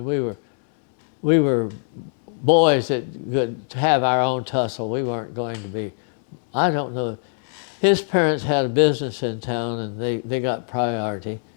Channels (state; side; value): silent; right; digital silence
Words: we were boys that could have our own tussle. We weren't going to be, I don't know. His parents had a business in town, and they got priority,